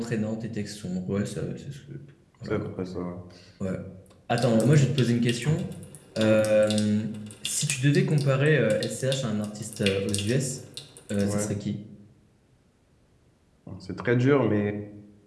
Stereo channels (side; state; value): both; identical; correlation 1.00